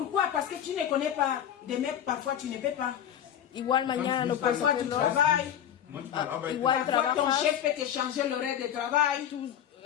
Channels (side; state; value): right; quieter; 9.9 dB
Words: Parce que tu ne connais pas. Demain, parfois, tu ne peux pas. Igual mañana no puedes Parfois, tu hacerlo. travailles. Manchmal arbeitet igual Parfois, ton trabajas. chef peut te changer l'horaire de travail.